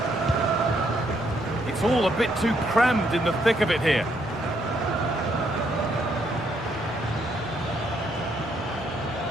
It's all a bit too crammed in the thick of it here.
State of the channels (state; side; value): normal; both; correlation 0.73